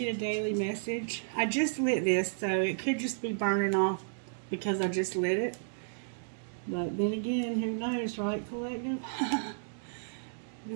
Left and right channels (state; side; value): silent; left; digital silence